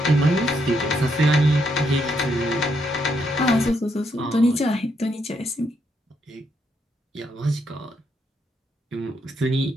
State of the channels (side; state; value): both; normal; correlation 0.76